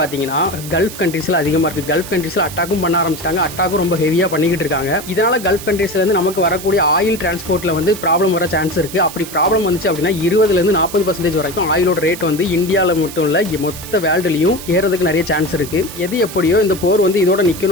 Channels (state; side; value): noise; right; hiss, 12 dB below the sound